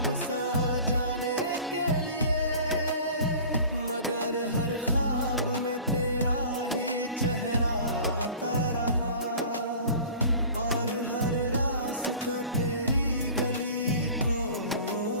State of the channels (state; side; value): inverted; both; correlation -0.42